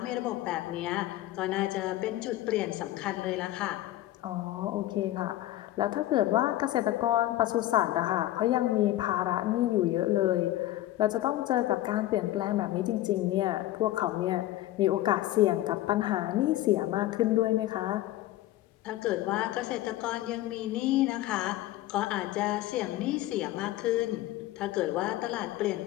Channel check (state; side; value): quieter; right; 15.1 dB